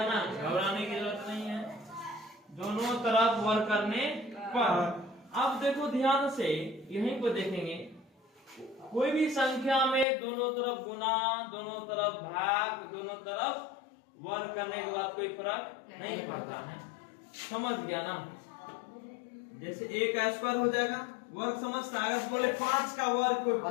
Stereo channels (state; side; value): drops out; right; at 10.1 s